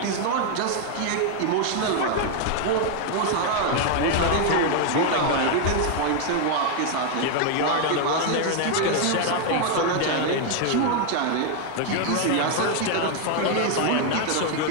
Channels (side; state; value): both; different; correlation 0.00